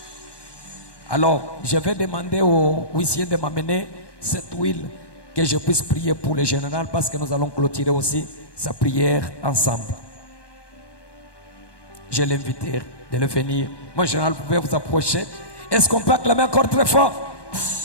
Alors, je vais demander au huissier de m'amener cette huile que je puisse prier pour le général parce que nous allons clôturer aussi sa prière ensemble. Je l'invite de le venir. Mon général, vous pouvez vous approcher. Est-ce qu'on peut acclamer encore très fort?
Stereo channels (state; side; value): late; right; 1.2 ms